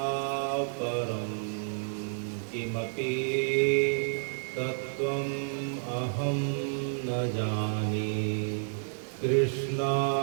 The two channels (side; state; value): left; silent; digital silence